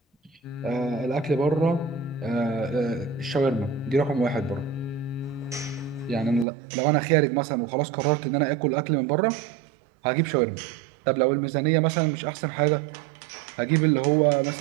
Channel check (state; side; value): drops out; left; at 6.5 s